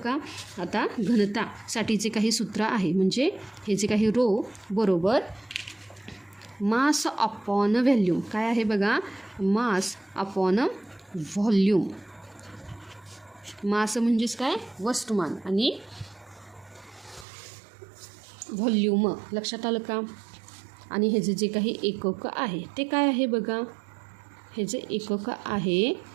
आता घनतासाठी जे काही सूत्र आहे म्हणजे हे जे काही रो बरोबर मास अपॉन व्हॉल्यूम. काय आहे बघा, मास अपॉन व्हॉल्यूम. मास म्हणजेच काय, वस्तुमान, आणि व्हॉल्यूम. लक्षात आलं का. आणि हे जे काही एकक आहे ते काय आहे बघा, हे जे एकक आहे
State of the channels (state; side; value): drops out; left; at 17.2 s